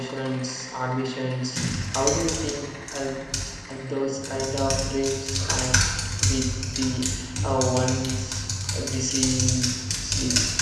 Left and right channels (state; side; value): identical; both; correlation 1.00